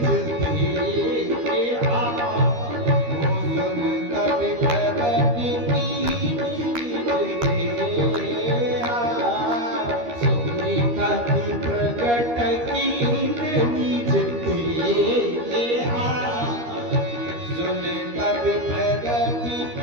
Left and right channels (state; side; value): late; left; 13 ms